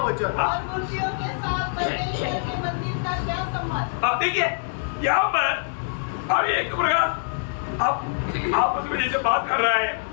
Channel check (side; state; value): right; silent; digital silence